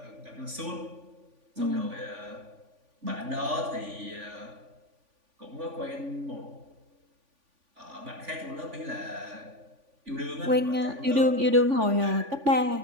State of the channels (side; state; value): left; late; 3.5 ms